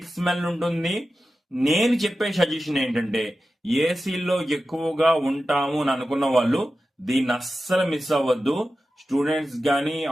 స్మెల్ ఉంటుంది. నేను చెప్పే సజెషన్ ఏంటంటే ఏసీలో ఎక్కువగా ఉంటాము అని అనుకున్న వాళ్ళు దీన్ని అస్సలు మిస్ అవ్వద్దు. స్టూడెంట్స్ కానీ,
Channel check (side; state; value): both; normal; correlation 0.93